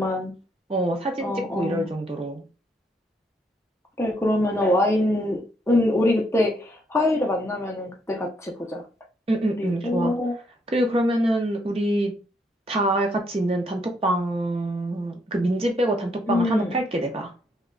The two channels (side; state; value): both; normal; correlation 0.73